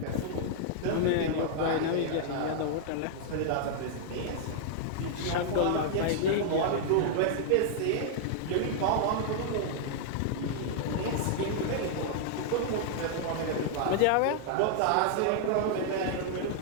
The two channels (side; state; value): both; different; correlation -0.01